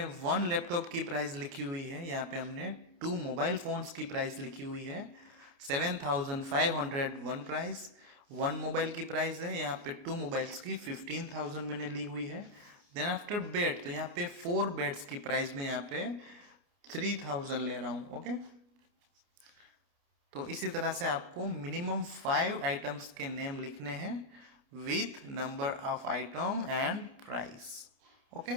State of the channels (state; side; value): late; left; 29 ms